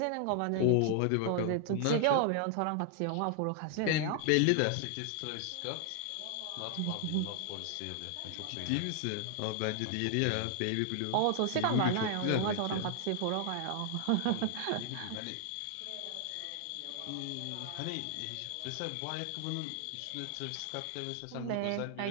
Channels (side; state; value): both; different; correlation 0.00